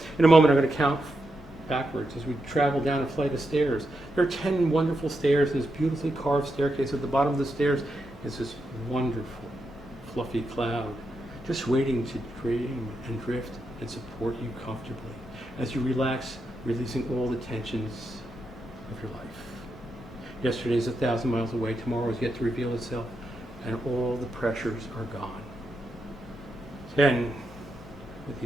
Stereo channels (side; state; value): both; normal; correlation 0.85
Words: In a moment, I'm going to count backwards as we travel down a flight of stairs. There are 10 wonderful stairs and this beautifully carved staircase. At the bottom of the stairs is this wonderful, fluffy cloud, just waiting to dream and drift and support you comfortably as you relax, releasing all the tensions of your life. Yesterday is 1,000 miles away. Tomorrow is yet to reveal itself, and all the pressures are gone. 10, with